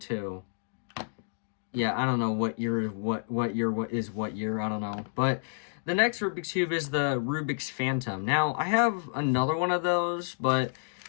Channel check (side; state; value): right; silent; digital silence